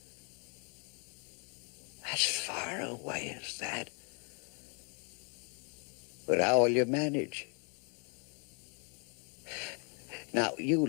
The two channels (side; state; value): right; quieter; 38.3 dB